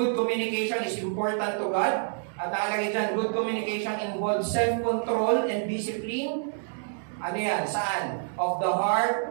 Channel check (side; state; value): left; silent; digital silence